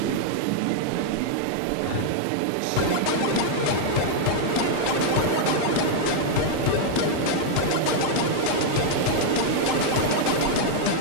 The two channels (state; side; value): different; both; correlation 0.00